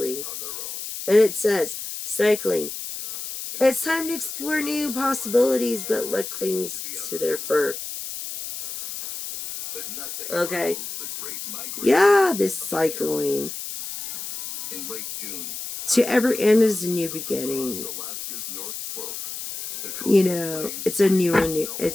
on their own. And it says, cycling. It's time to explore new possibilities, but luck clings to their fur. But nothing Okay. rivals the Great Migration Yeah, this of the cycling. caribou. In late June, To every end is a new beginning. across Alaska's North Slope, the You coastal know, plains it's a bridge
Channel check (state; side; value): noise; left; hiss, 8 dB below the sound